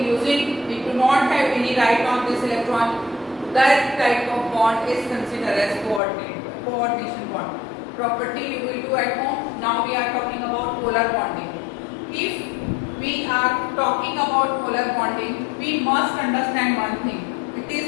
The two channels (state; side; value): drops out; right; at 6.0 s